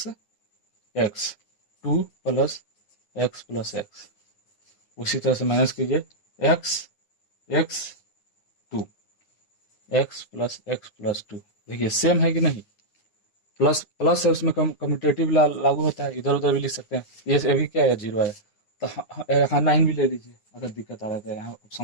x 2 plus x, उसी तरह से माइनस कीजिए x x 2 x प्लस 2, देखिए सेम है कि नहीं, प्लस प्लस है, उसमें कम्यूटेटिव लागू होता है, इधर उधर भी लिख सकते हैं। ये भी क्या है, 0 आया, तो हाँ 9 भी ले लीजिए, अगर दिक्कत आ रहा है यहाँ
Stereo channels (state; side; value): late; right; 9.7 ms